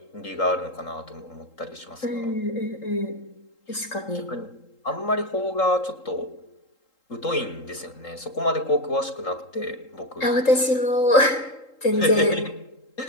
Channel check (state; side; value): late; right; 3.8 ms